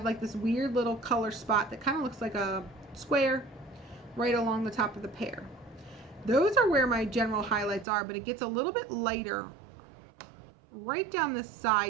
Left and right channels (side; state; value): left; drops out; at 7.9 s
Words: like this weird little color spot that kind of looks like a square right along the top of the pear. Those are where my general highlights are, but it gets a little bit lighter right down this